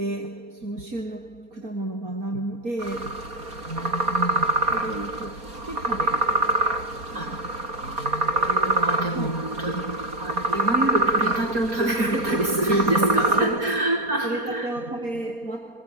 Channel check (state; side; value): late; left; 4.3 ms